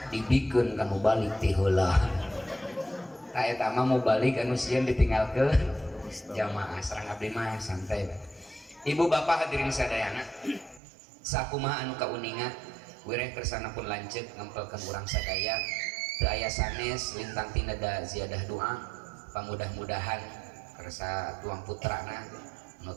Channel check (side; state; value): left; drops out; at 10.8 s